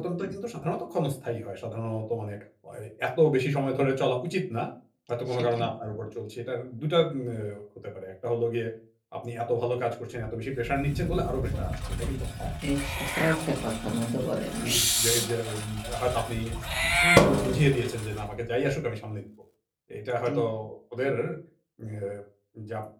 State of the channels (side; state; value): both; identical; correlation 1.00